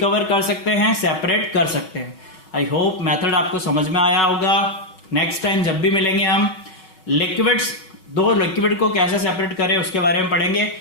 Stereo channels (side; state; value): right; late; 5.3 ms